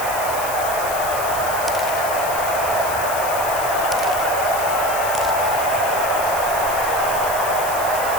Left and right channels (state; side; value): noise; left; hiss, 8 dB below the sound